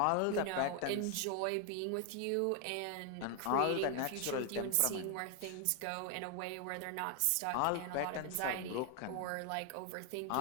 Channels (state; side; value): different; both; correlation 0.00